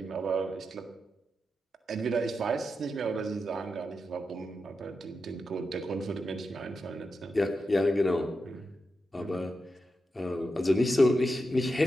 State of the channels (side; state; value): both; normal; correlation 0.88